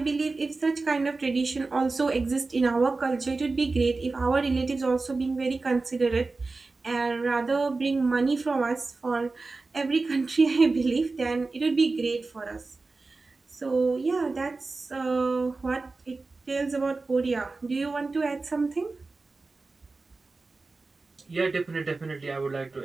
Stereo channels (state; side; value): quieter; left; 3.7 dB